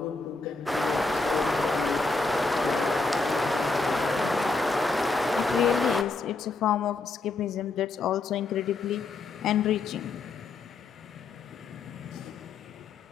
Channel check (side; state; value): right; quieter; 3.8 dB